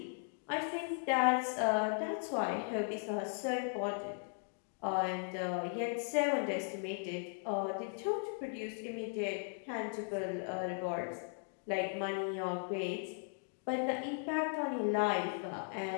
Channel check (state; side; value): silent; right; 53 dB below the other